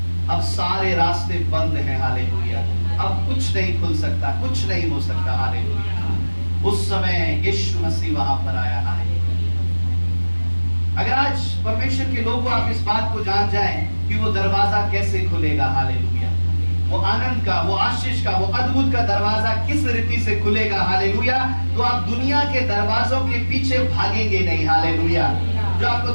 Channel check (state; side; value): inverted; both; correlation -1.00